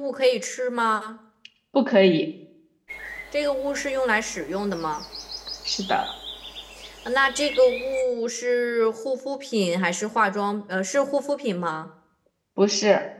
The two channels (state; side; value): identical; both; correlation 1.00